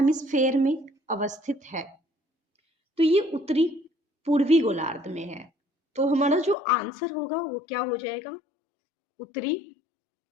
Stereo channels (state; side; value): drops out; right; at 6.6 s